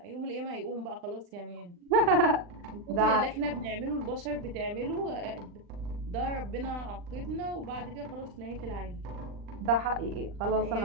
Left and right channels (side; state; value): left; late; 39 ms